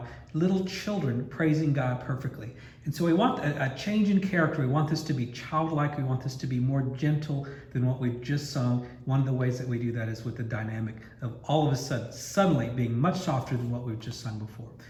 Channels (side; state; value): both; identical; correlation 1.00